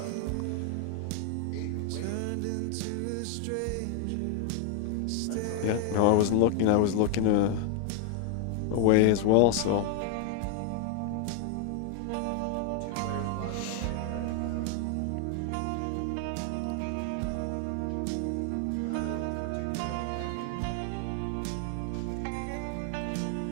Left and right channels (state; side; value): different; both; correlation 0.00